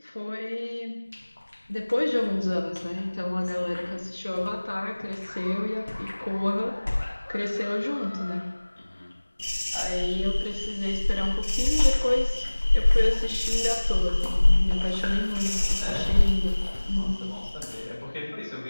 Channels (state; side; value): inverted; both; correlation -1.00